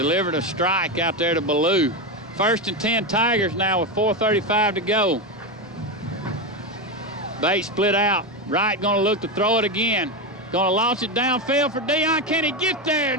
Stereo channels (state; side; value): normal; both; correlation 0.12